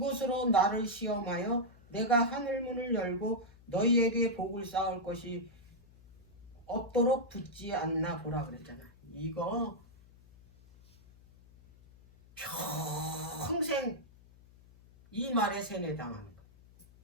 나를 시험하여 내가 하늘문을 열고 너희에게 복을 쌓을 것이 없도록 붙지 않나 보라 그랬잖아. 이거 평생 이 말에 세뇌당하는 거야.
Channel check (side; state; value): left; noise; hum, 25 dB below the sound